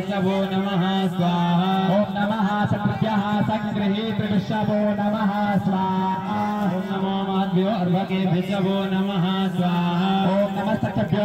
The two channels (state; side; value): identical; both; correlation 1.00